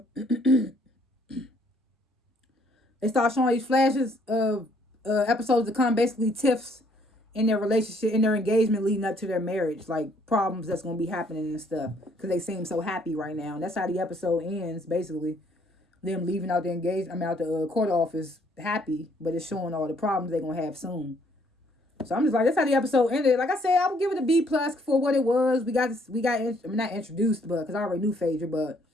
episodes to come, basically tiffs in their relationship, in their engagement leading up to their marriage, like problems that's going to be happening and stuff, because they seem so happy right now. And that's how the episode ends, basically. Them leaving out the court office happy, but it's showing all the problems they're going to have soon. So I'm just like, that's how the episode ended. Like I said, I would give it a B+ for what it was. We got not introduced, but because I already knew Phaedra, but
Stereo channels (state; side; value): normal; both; correlation 0.65